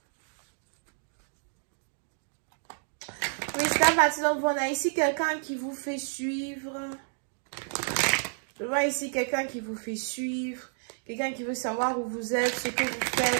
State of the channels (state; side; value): silent; left; digital silence